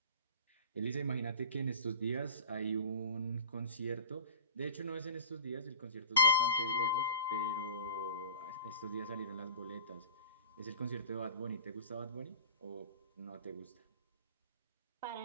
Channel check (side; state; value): both; inverted; correlation -0.41